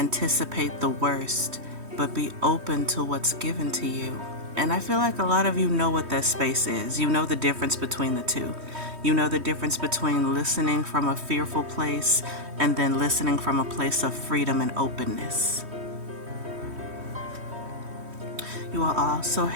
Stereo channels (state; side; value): late; left; 3.1 ms